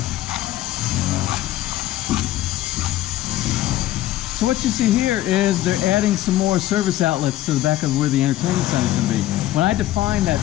So what you see here is they're adding some more service outlets to the back of where the entertainment center is going to be. When I defined that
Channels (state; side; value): quieter; right; 14.5 dB